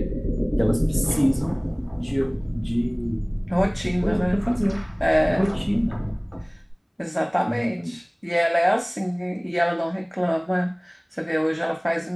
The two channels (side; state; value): both; identical; correlation 1.00